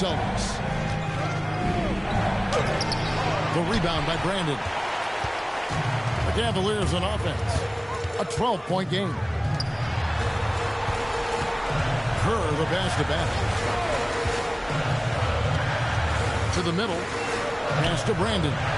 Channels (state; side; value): identical; both; correlation 1.00